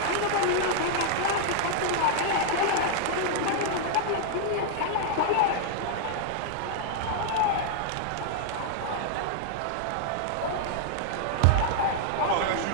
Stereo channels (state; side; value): different; both; correlation -0.01